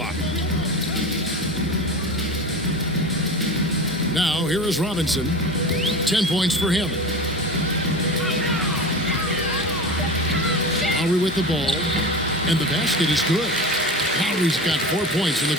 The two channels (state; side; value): normal; both; correlation 0.29